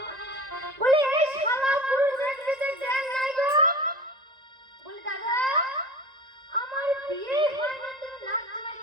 বলে এই শালা পুরো দেখতে দেন নাই গো বলে দাদা আমার বিয়ে হয়নি তুমি নাম জামাই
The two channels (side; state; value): left; late; 1.9 ms